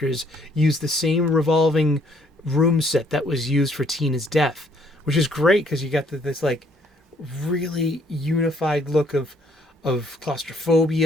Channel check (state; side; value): normal; both; correlation 0.65